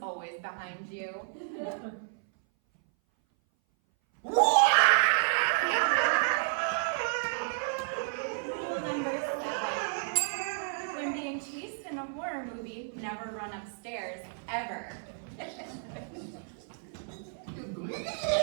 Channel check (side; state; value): left; silent; 57 dB below the other